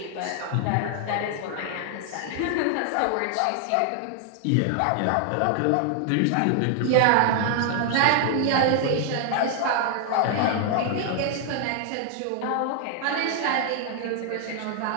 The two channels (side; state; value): both; different; correlation 0.00